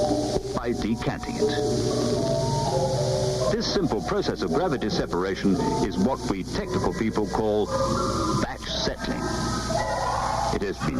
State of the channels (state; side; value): identical; both; correlation 1.00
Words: by decanting it. This simple process of gravity separation is what we technical people call batch settling. It has